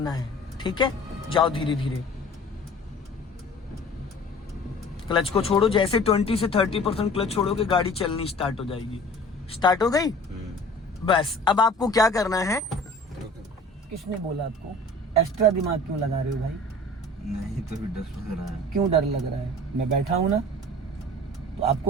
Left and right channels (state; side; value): normal; both; correlation 0.45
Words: है, ठीक है? जाओ धीरे धीरे, क्लच को छोड़ो। जैसे 20 से 30% क्लच छोड़ोगे गाड़ी चलनी स्टार्ट हो जाएगी। स्टार्ट हो गई? बस अब आपको क्या करना है? किसने बोला आपको? एक्स्ट्रा दिमाग क्यों लगा रहे हो भाई? नहीं तो डर लग रहा है। क्यों डर लग रहा है? मैं बैठा हूं ना, तो